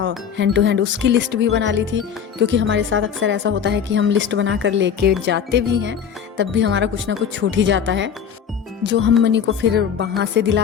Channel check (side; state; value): right; quieter; 7.7 dB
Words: हैंड टू हैंड, उसकी लिस्ट भी बना ली थी, क्योंकि हमारे साथ अक्सर ऐसा होता है कि हम लिस्ट बना कर लेके जाते भी हैं, तब भी हमारा कुछ ना कुछ छूट ही जाता है, जो हम मनी को फिर वहाँ से